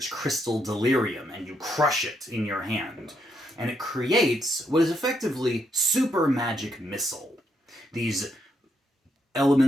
Crystal Delirium and you crush it in your hand, and it creates what is effectively super magic missile. These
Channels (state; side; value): normal; both; correlation 0.77